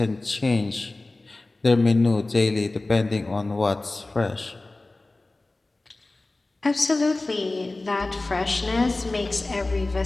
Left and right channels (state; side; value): quieter; right; 3.0 dB